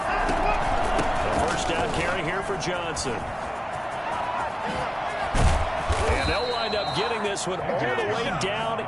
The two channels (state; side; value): identical; both; correlation 1.00